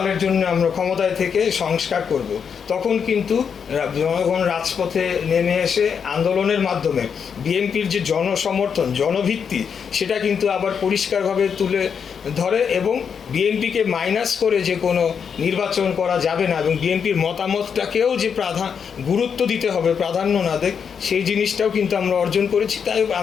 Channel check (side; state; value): right; quieter; 6.8 dB